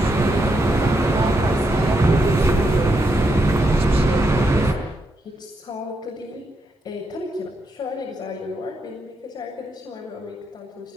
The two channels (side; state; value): both; normal; correlation 0.81